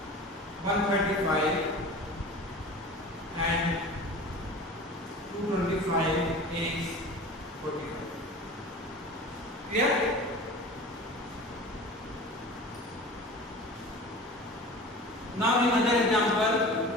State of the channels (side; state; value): both; normal; correlation 0.37